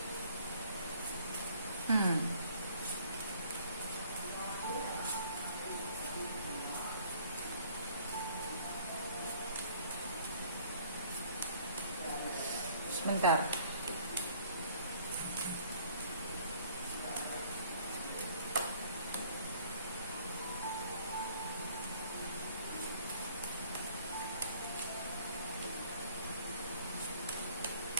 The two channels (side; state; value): both; inverted; correlation -0.58